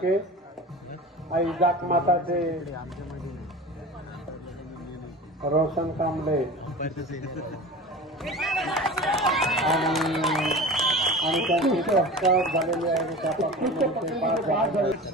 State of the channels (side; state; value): both; normal; correlation 0.34